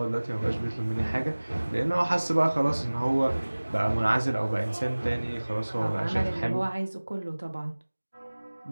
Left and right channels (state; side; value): inverted; both; correlation -1.00